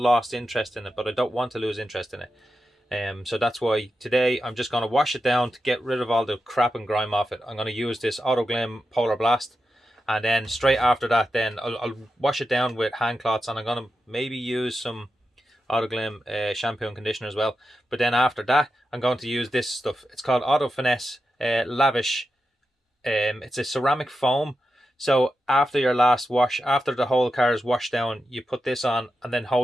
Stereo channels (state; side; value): normal; both; correlation 0.89